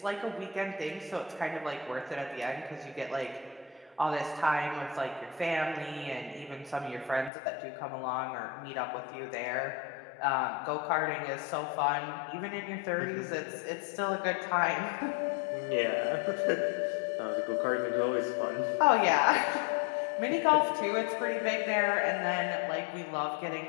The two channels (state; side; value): drops out; right; at 7.3 s